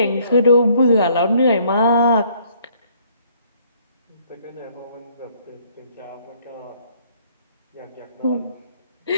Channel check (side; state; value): both; inverted; correlation -0.64